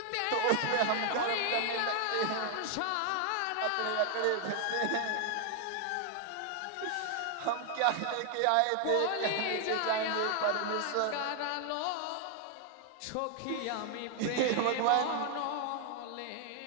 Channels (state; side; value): different; both; correlation 0.00